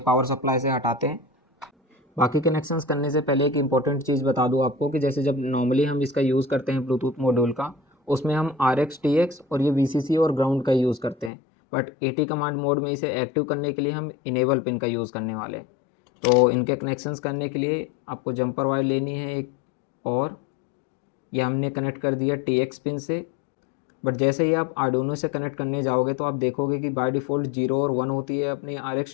पावर सप्लाई से हटाते हैं। बाकी कनेक्शंस करने से पहले एक इंपॉर्टेंट चीज़ बता दूं आपको कि जैसे जब नॉर्मली हम इसका यूज़ करते हैं ब्लूटूथ मॉड्यूल का, उसमें हम RX TX और ये VCC और ग्राउंड का यूज़ करते हैं, बट AT कमांड मोड में इसे एक्टिव करने के लिए हम इनेबल पिन का यूज़ करने वाले हैं। तो इनके कनेक्शंस करने के लिए आपको जंपर वायर लेनी है एक, और ये हमने कनेक्ट कर दिया TX पिन से। बट जैसे ही आप आर्डुइनो से कनेक्ट करने जाओगे तो आप देखोगे कि बाय डिफ़ॉल्ट 0 और 1 होती है अपनी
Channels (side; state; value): right; drops out; at 11.3 s